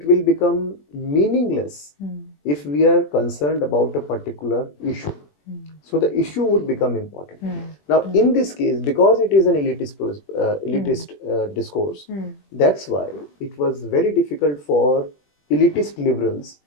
will become meaningless if we are concerned about a particular issue. So the issue would become important. Now, in this case, because it is an elitist discourse, that's why it was very difficult for elitist liberals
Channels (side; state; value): right; late; 21 ms